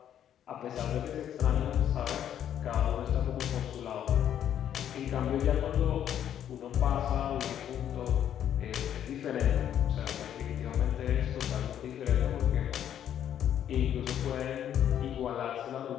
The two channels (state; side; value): quieter; right; 10.1 dB